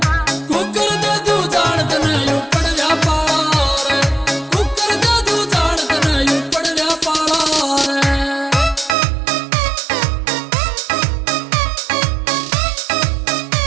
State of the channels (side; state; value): left; drops out; at 9.0 s